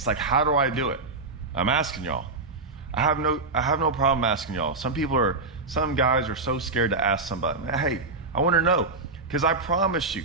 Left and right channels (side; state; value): left; quieter; 3.6 dB